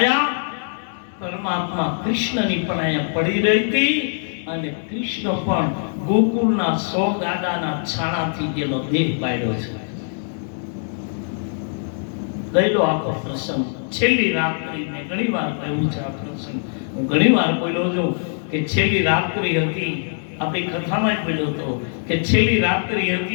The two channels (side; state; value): right; silent; digital silence